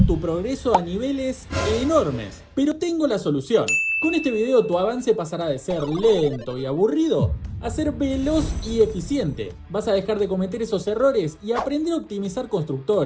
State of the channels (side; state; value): both; identical; correlation 1.00